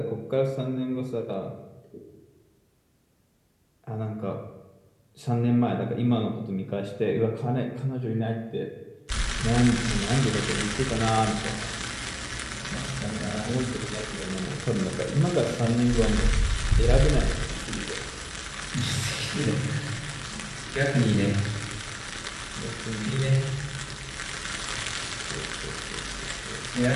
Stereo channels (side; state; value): both; identical; correlation 1.00